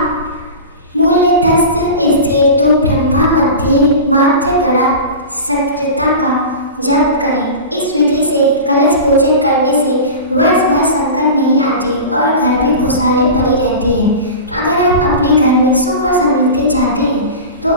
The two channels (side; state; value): both; inverted; correlation -0.31